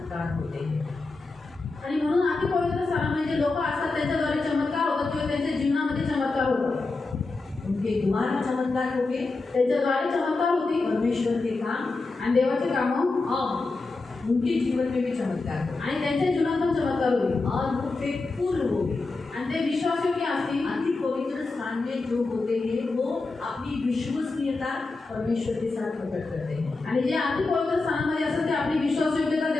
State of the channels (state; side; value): quieter; right; 3.6 dB